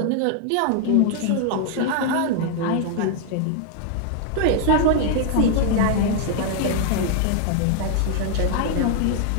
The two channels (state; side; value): different; both; correlation 0.00